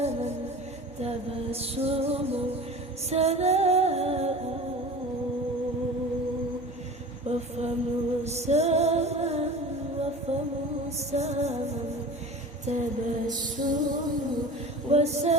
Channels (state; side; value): normal; both; correlation 0.37